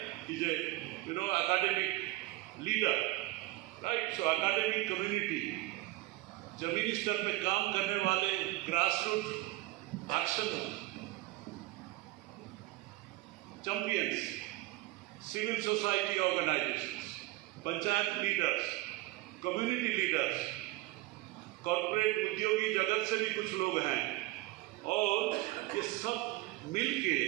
is a academic leader, right. So academic community, जमीनी स्तर पे काम करने वाले, grass root action champions, civil society organisations, panchayat leaders, community leaders, corporate उद्योगी जगत से भी कुछ लोग हैं, और ये सब मिलके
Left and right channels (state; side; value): quieter; left; 18.4 dB